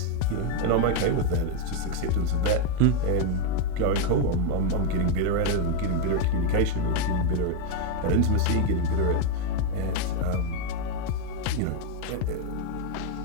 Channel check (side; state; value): both; different; correlation 0.02